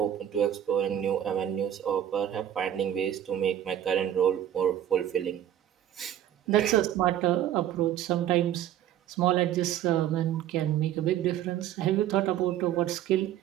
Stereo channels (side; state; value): left; quieter; 11.1 dB